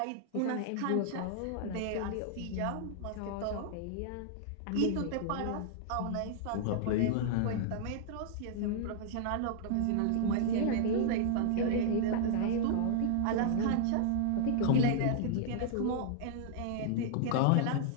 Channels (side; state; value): both; different; correlation -0.01